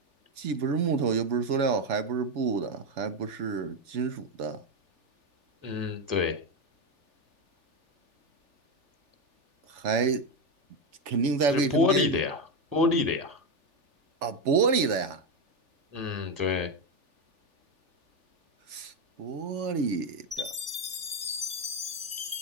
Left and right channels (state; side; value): late; left; 3.4 ms